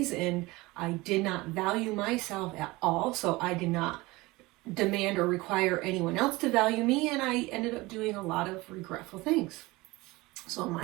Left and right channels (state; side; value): quieter; left; 21.5 dB